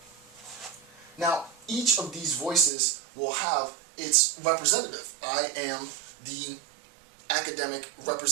Now, each of these voices will have its representative. I am the academic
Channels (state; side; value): drops out; left; at 2.7 s